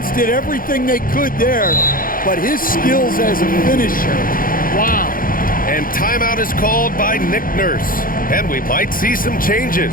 did everything they could there, but his skills as a finisher, wow. And timeout is called by Nick Nurse. And we might see some changes.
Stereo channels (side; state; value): right; late; 0.41 ms